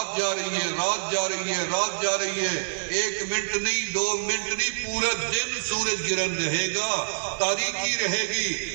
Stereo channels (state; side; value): silent; left; 61 dB below the other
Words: جا رہی ہے، رات جا رہی ہے، رات جا رہی ہے، ایک منٹ نہیں، 2 منٹ نہیں، پورا دن سورج گرہن رہے گا، تاریکی رہے